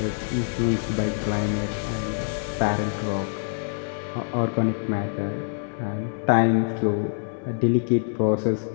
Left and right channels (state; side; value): silent; right; digital silence